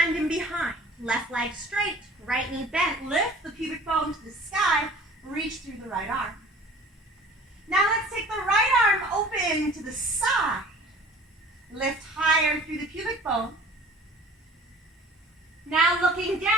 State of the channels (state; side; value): normal; both; correlation 0.47